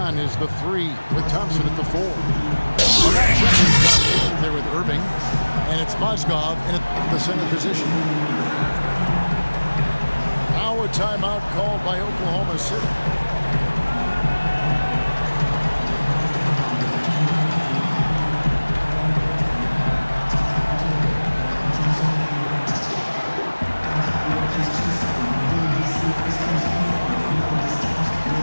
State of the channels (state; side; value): inverted; both; correlation -1.00